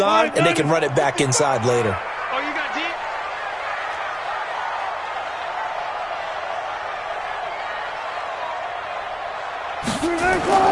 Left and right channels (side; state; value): both; identical; correlation 1.00